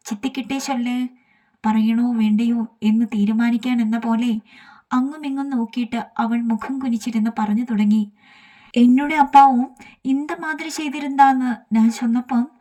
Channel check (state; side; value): identical; both; correlation 1.00